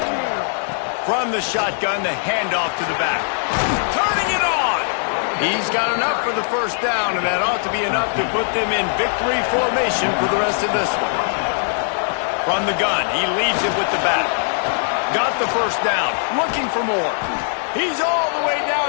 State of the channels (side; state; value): right; silent; digital silence